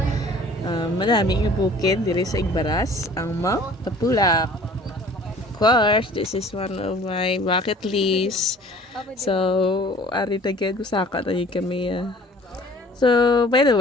malaming bukid diri sa Igbaras, ang Mount Tapulak. Of course, this is one of my bucket list. So, ari tagad usaka na yun kami. So, by the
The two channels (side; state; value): both; normal; correlation 0.49